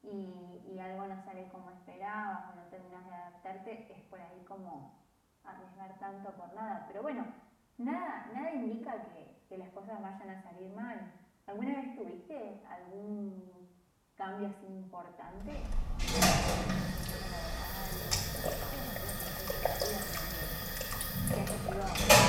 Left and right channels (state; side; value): identical; both; correlation 1.00